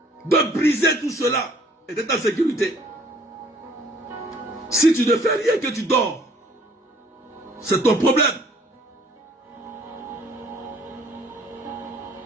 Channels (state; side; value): normal; both; correlation 0.57